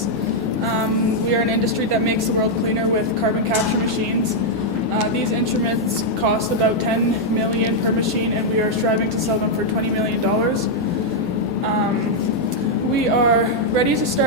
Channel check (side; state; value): both; normal; correlation -0.03